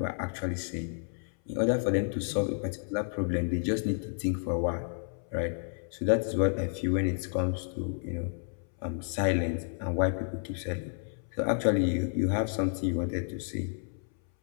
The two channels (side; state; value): right; silent; 57 dB below the other